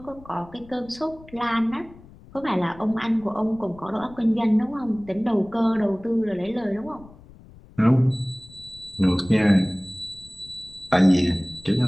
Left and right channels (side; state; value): left; noise; rumble, 22 dB below the sound